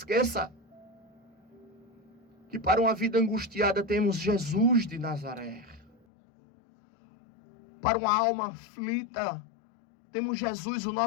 que para uma vida angustiada temos Jesus de Nazaré. Para uma alma aflita, temos Jesus, o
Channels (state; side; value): drops out; right; at 6.0 s